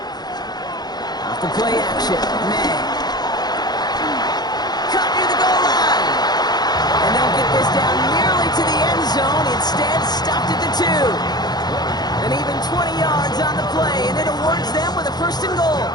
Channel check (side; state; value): right; late; 0.20 ms